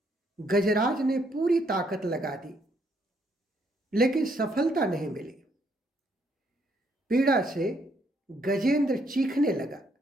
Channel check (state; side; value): normal; both; correlation 0.71